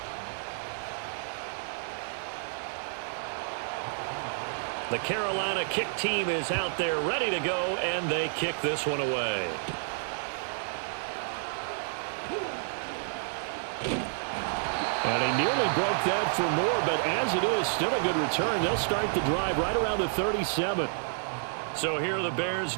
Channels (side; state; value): left; silent; digital silence